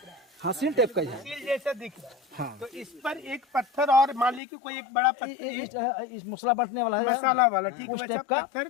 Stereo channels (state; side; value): drops out; right; at 4.4 s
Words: है, हाँ, सील टाइप का ही है। स्टील जैसा दिख रहा है। हाँ, तो इस पर एक पत्थर और मान लीजिए कोई एक बड़ा पत्थर, इस मसला बैठने वाला है, मसाला वाला, ठीक है, उस वैसा टाइप का पत्थर